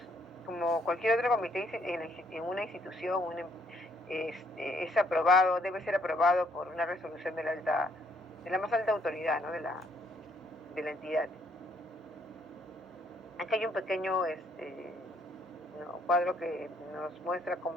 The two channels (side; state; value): both; normal; correlation 0.68